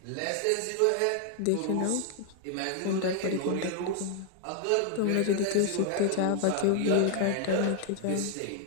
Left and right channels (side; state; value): both; different; correlation 0.00